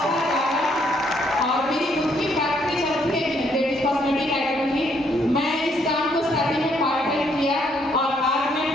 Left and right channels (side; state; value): both; normal; correlation 0.70